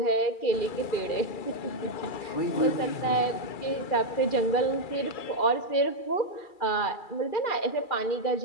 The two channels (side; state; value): right; late; 2.3 ms